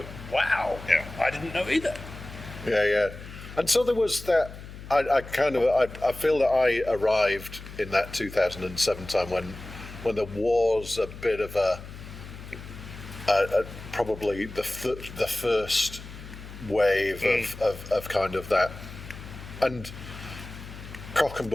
"Wow, I didn't know either." Yeah. And so there was that. I feel that I arrived in that 2007 time when there was a bit of a probably the first wave of kind of that, and Cock and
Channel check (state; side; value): noise; left; hum, 14 dB below the sound